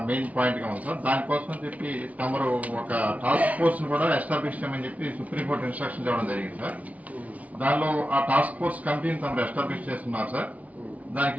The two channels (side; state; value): left; late; 0.070 ms